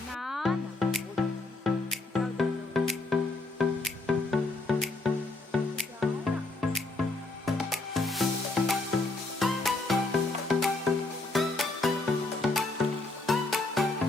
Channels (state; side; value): quieter; right; 3.2 dB